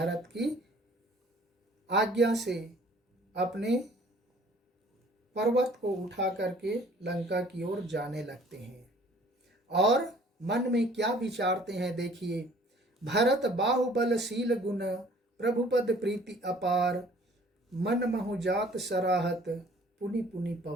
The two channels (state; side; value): normal; both; correlation 0.54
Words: की आज्ञा से अपने पर्वत को उठा करके लंका की ओर जाने लगते हैं। और मन में क्या विचारते हैं देखिए, भरत बाहुबलशील गुण प्रभुपद प्रीति अपार, मन महु जात सराहत पुनि पुनि